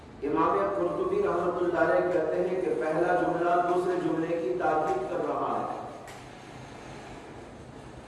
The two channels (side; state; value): both; identical; correlation 1.00